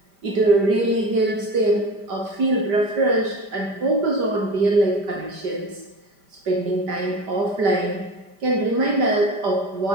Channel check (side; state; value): left; late; 5.1 ms